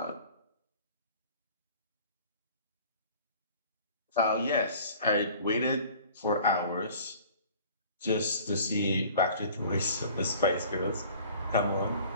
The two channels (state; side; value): inverted; both; correlation -0.48